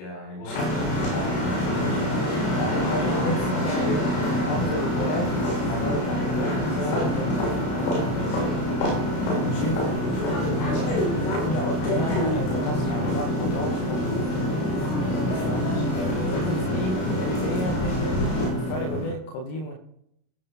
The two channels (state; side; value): late; right; 32 ms